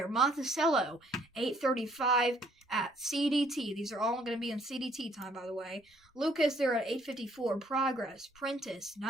Monticello 835 at CDT. These are all going to be in CDT time, by the way. Lucas there at 854. Progress. Prentice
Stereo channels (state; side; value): normal; both; correlation 0.64